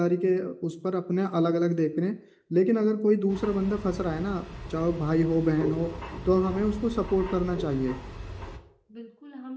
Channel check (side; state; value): both; identical; correlation 1.00